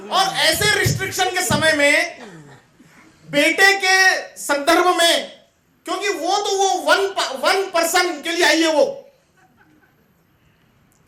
और ऐसे रिस्ट्रिक्शन के समय में बेटे के संदर्भ में, क्योंकि वो तो वो वन पर्सन के लिए आई है वो,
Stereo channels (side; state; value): both; identical; correlation 1.00